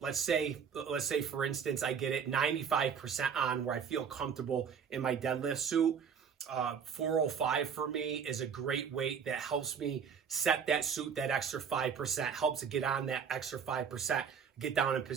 say for instance, I get it 95% on where I feel comfortable in my deadlift suit. 405 for me is a great weight that helps me set that suit that extra 5%, helps to get on that extra 5%, get down in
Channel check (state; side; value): quieter; left; 7.0 dB